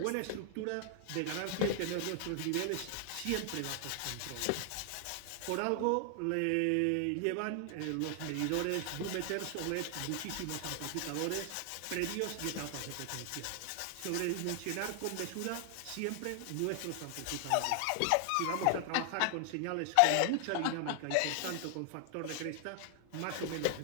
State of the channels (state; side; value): different; both; correlation 0.00